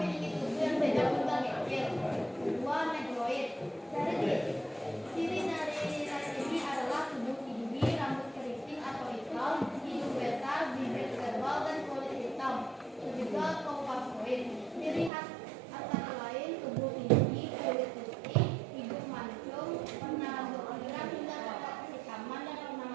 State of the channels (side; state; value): left; drops out; at 15.1 s